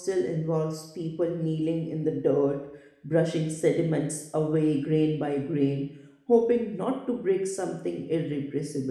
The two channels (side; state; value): both; identical; correlation 1.00